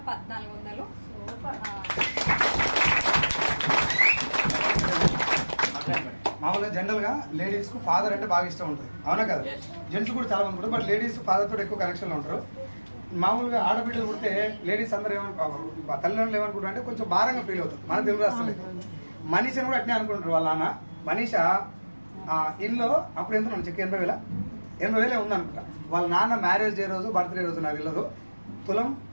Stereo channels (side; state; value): both; inverted; correlation -1.00